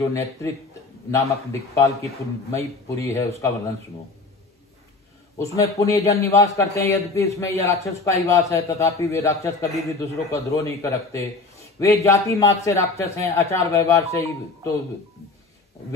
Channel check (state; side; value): quieter; right; 3.6 dB